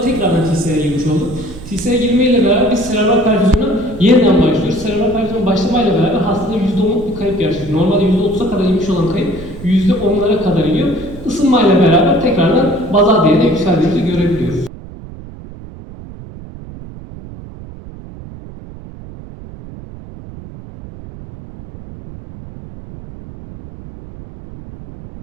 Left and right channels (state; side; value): noise; right; rumble, 15 dB below the sound